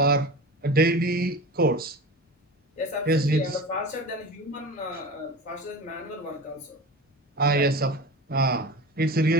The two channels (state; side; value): normal; both; correlation 0.32